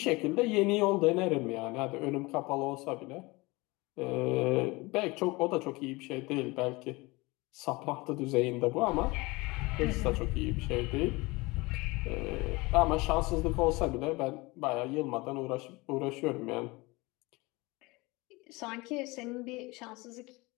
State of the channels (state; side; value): quieter; right; 23.5 dB